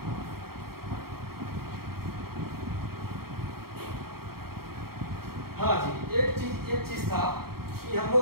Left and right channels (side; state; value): left; late; 0.94 ms